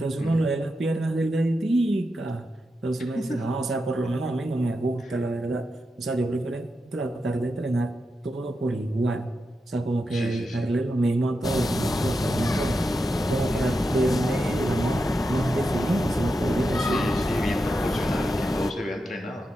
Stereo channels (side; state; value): both; normal; correlation 0.87